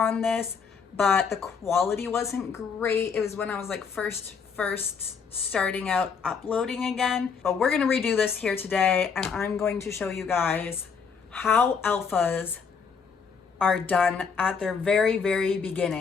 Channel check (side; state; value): right; quieter; 6.0 dB